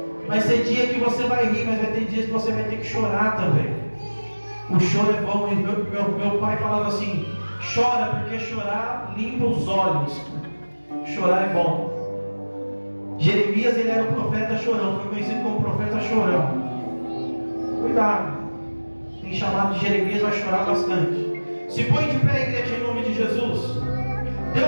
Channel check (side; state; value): both; inverted; correlation -1.00